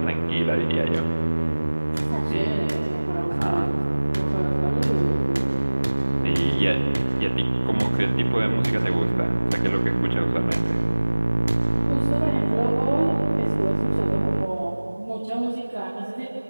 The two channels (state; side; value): inverted; both; correlation -1.00